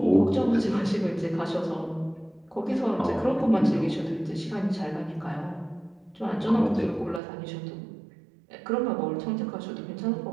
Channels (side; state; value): left; drops out; at 7.2 s